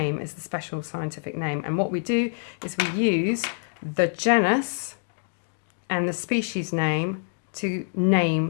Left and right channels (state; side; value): silent; right; 61 dB below the other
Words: is the special scientific name. And what we do is we use the genus and the species name to